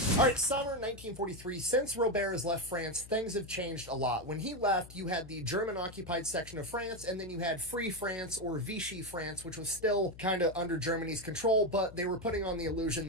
All right, summer 1943. Since Robert has left France, things have changed a lot. When he left, you had the German-occupied section of France, and then you had Free France, or Vichy France, which was still kind of under Germany's control, but they were putting on the illusion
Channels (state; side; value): noise; left; hum, 18 dB below the sound